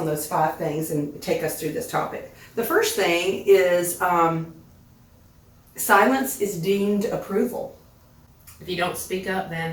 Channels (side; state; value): both; identical; correlation 1.00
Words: those 5 things and take us through this topic. The first thing is silence is deemed approval. If you don't speak up,